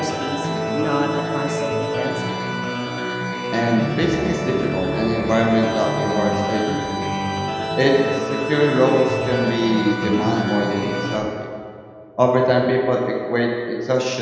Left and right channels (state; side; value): identical; both; correlation 1.00